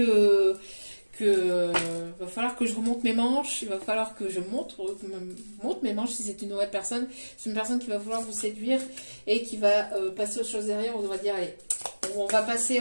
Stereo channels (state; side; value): inverted; both; correlation -1.00